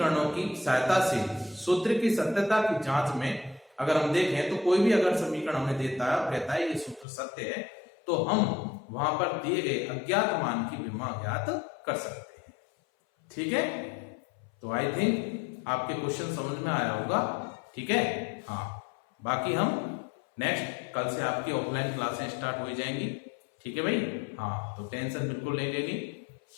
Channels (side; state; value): right; drops out; at 7.1 s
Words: की सहायता से सूत्र की सत्यता की जांच में अगर हम देखें तो कोई भी अगर समीकरण हमें देता है और कहता है ये सूत्र सत्य है, तो हम वहां पर दिए गए अज्ञात मान की विमा ज्ञात कर सकते हैं। ठीक है, तो आई थिंक आपके क्वेश्चन समझ में आया होगा। ठीक है, हाँ, बाकी हम नेक्स्ट कल से आपकी ऑफलाइन क्लासें स्टार्ट हो जाएंगी। ठीक है भाई, हाँ, तो टेंशन बिल्कुल नहीं लेनी